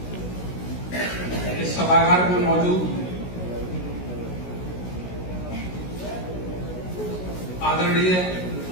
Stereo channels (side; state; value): right; late; 16 ms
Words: इस सभागार में मौजूद आदरणीय